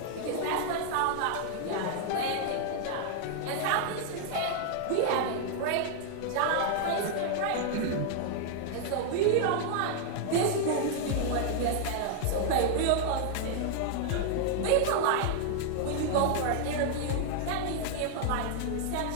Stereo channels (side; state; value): both; different; correlation 0.00